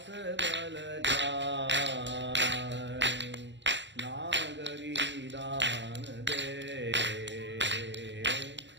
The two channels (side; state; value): left; late; 0.53 ms